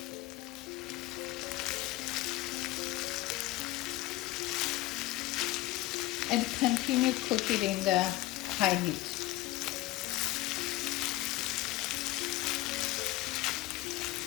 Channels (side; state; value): right; quieter; 17.4 dB